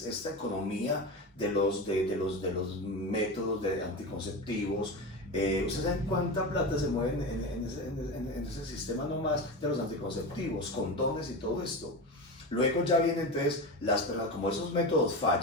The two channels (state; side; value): normal; both; correlation 0.24